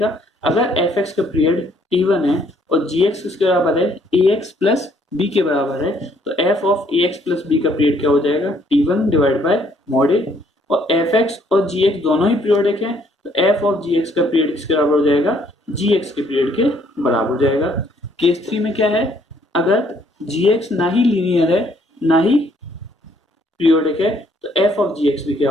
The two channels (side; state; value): both; normal; correlation 0.66